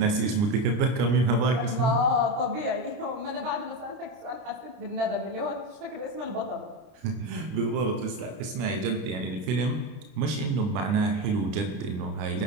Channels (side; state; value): left; late; 30 ms